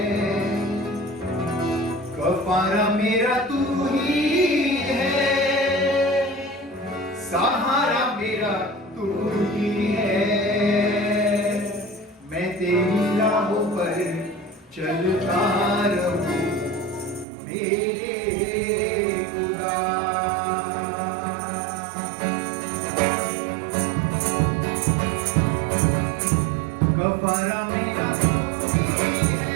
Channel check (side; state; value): left; drops out; at 17.2 s